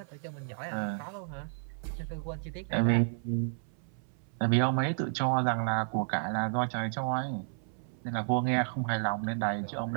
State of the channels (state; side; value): silent; left; 56 dB below the other